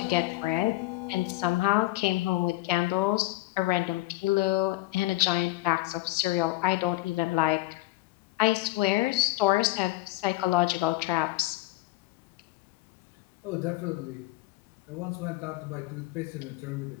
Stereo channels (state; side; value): quieter; right; 18.4 dB